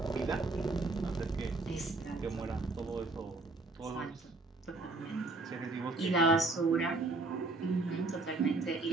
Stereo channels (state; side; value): quieter; left; 3.4 dB